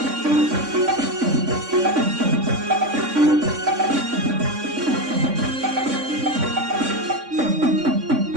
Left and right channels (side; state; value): left; late; 3.5 ms